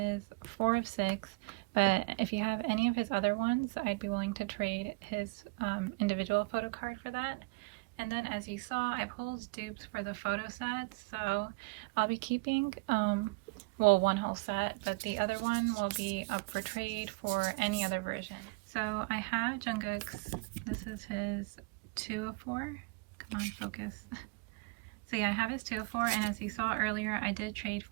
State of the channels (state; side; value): quieter; left; 28.5 dB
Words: 4 of 6, but if you have any of his other ones, I'd be willing to trade his individual photo card for that. And then, as you saw, I pulled dupes for the photo sets, so I'll be keeping, well, one whole set, but the other one will be up for trade for any other version. So I have Jungkook's, this is his 2 of 4. Come on, focus. So yeah, I have his 2 of 4, and as you saw earlier, I did trade